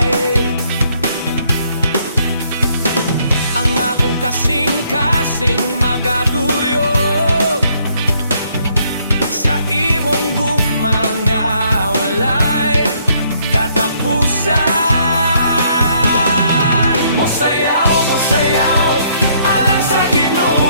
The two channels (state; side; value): inverted; both; correlation -0.68